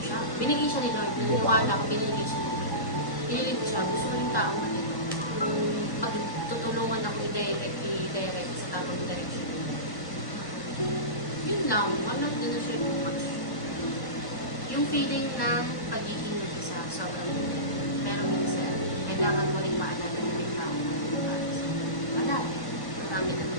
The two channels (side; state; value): right; late; 1.1 ms